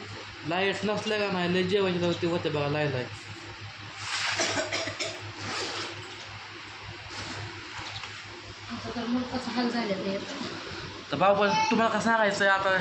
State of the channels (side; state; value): both; identical; correlation 1.00